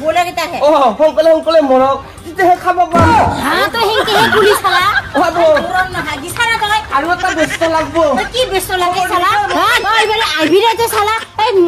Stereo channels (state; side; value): identical; both; correlation 1.00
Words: কেইটাকে সোনকালে মৰক তেতিয়াহে খাব পাম তই হেংকেহে গুলি চালা হাগি চালা তই আৰু এটা ব্যস্ত লাগব কি ব্যস্ত লাগে চালা তই এবারে আইবিরাতে চালা এই